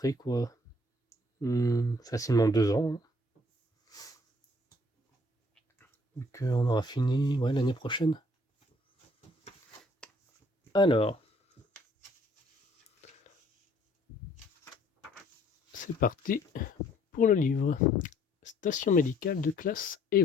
quoi facilement 2 ans. Hein. Vu qu'on aura fini l'année prochaine. Alors, c'est parti pour le livre. Station médicale de classe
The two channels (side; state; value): both; normal; correlation 0.61